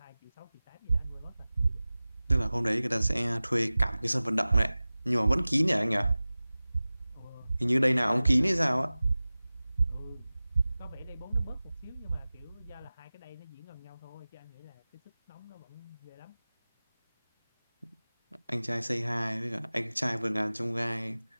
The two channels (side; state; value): both; inverted; correlation -0.98